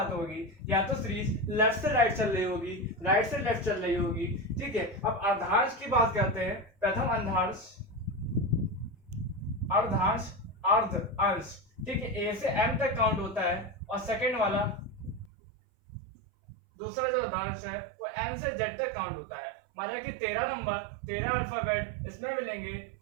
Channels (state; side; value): drops out; left; at 15.3 s